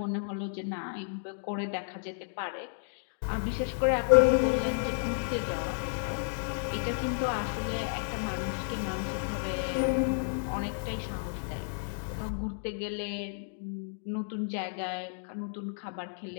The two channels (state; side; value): silent; right; digital silence